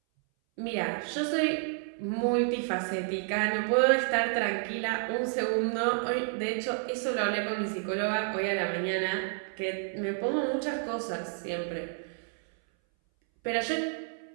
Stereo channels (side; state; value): left; silent; 58 dB below the other